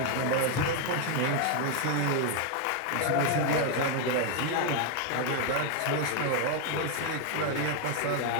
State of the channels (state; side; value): different; both; correlation 0.00